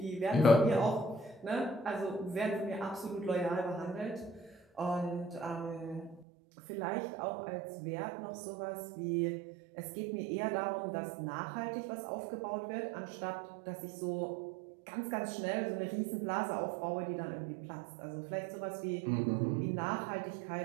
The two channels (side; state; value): left; drops out; at 6.2 s